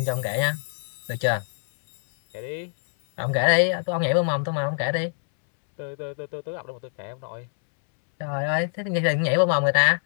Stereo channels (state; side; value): silent; right; 62 dB below the other